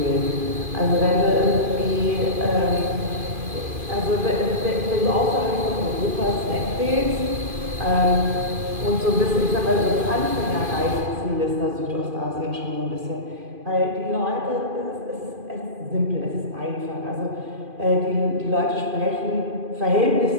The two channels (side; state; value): left; late; 2.5 ms